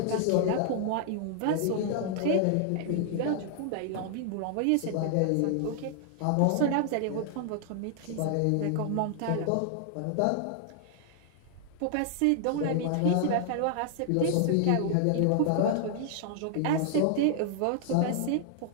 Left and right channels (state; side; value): different; both; correlation 0.00